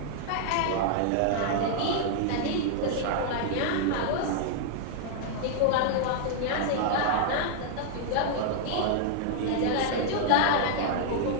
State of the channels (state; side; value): different; both; correlation -0.01